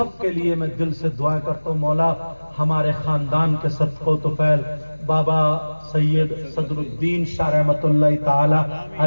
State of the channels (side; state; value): both; inverted; correlation -1.00